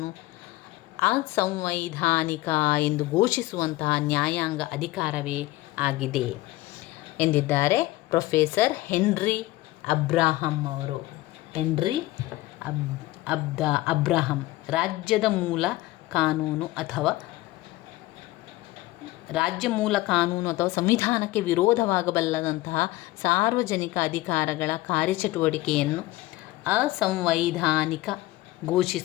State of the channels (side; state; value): right; quieter; 18.3 dB